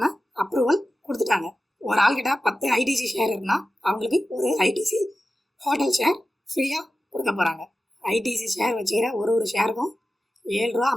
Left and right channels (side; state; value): both; normal; correlation 0.93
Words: அப்ரூவல் கொடுத்துட்டாங்க. ஒரு ஆள்கிட்ட 10 ஐடிசி ஷேர் இருக்குன்னா அவங்களுக்கு ஒரு ஐடிசி ஹோட்டல் ஷேர் ஃப்ரீயாக கொடுக்க போகிறாங்க. ஐடிசி ஷேர் வச்சுக்கிற ஒரு ஷேருக்கும் 7 ரூபா